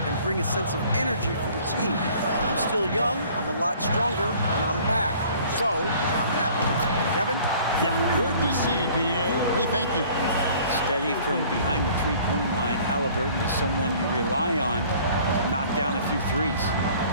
bring a sense of energy for the team. I'm still young, I'm a lot stronger, and I'm back. So, I'm happy." Kevin? Yeah, good to see, D.A. Hey, thank you. Steady from behind the three-point line. Halliburton is someone you rely on to knock down a few threes.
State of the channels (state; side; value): inverted; both; correlation -0.53